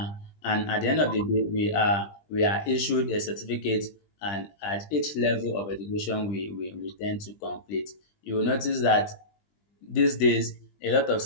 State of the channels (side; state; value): right; late; 20 ms